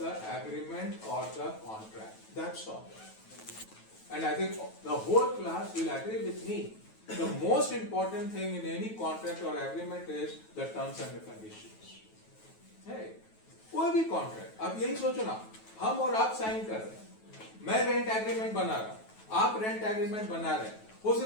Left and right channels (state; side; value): late; right; 9.2 ms